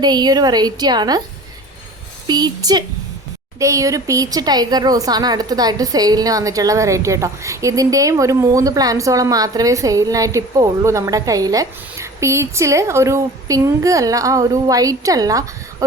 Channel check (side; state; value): both; normal; correlation 0.40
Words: ഈ ഒരു വെറൈറ്റിയാണ്. പീച്ച്. ഈ ഒരു പീച്ച് ടൈഗർ റോസാണ് അടുത്തതായിട്ട് സെയിലിന് വന്നിട്ടുള്ള വെറൈറ്റി കേട്ടോ. ഇതിൻ്റെയും ഒരു 3 പ്ലാന്റ്സോളം മാത്രമേ സെയിലിനായിട്ട് ഇപ്പോൾ ഉള്ളൂ നമ്മുടെ കയ്യിൽ. പീച്ചിൽ ഒരു പിങ്ക് അല്ല, ഒരു വൈറ്റ് അല്ല,